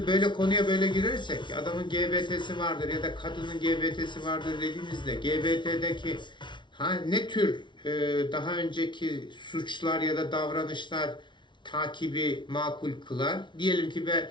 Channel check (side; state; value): right; late; 0.23 ms